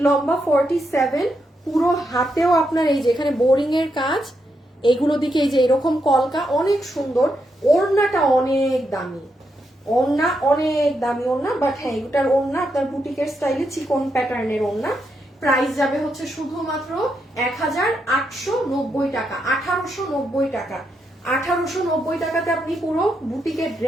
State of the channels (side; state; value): both; normal; correlation 0.82